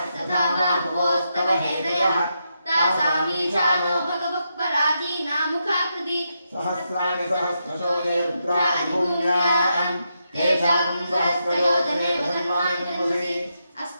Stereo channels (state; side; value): inverted; both; correlation -0.83